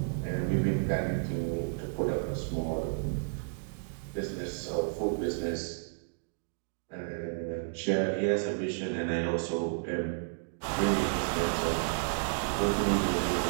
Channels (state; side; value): silent; left; digital silence